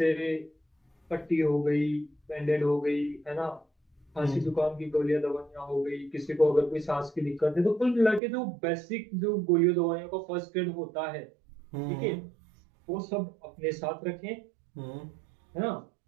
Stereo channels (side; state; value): left; drops out; at 8.2 s